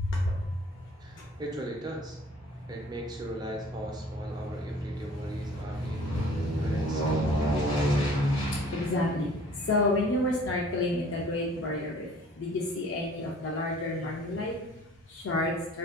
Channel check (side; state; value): both; normal; correlation 0.51